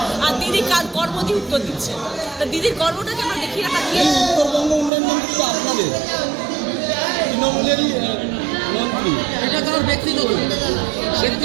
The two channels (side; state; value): left; drops out; at 4.9 s